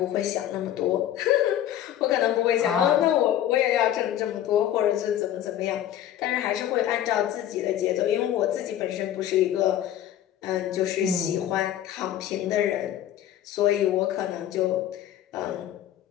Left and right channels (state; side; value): quieter; right; 11.6 dB